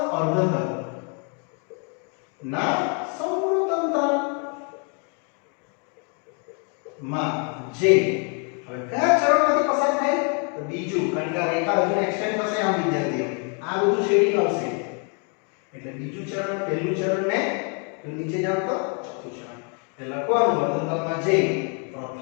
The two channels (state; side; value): quieter; right; 38.6 dB